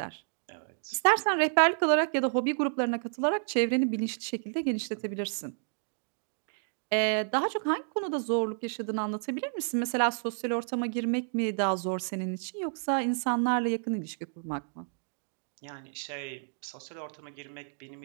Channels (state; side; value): silent; left; digital silence